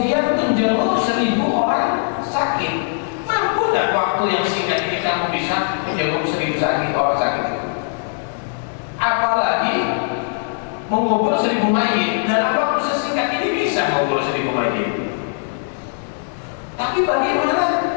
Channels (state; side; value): silent; right; digital silence